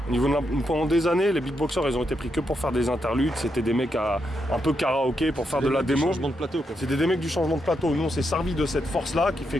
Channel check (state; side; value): normal; both; correlation 0.82